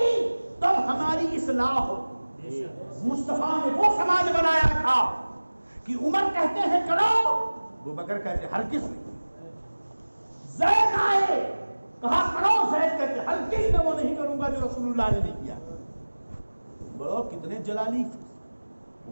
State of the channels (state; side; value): inverted; both; correlation -1.00